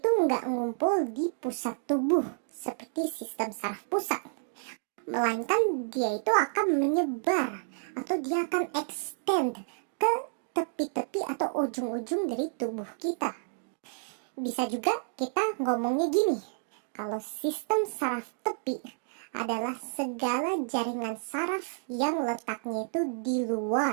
nggak ngumpul di pusat tubuh seperti sistem saraf pusat. Melainkan dia itu akan menyebar atau dia akan extend ke tepi-tepi atau ujung-ujung dari tubuh kita. Bisa juga kita ngomongnya gini, kalau sistem saraf tepi adalah segala jaringan saraf yang letaknya itu di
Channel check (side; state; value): left; silent; digital silence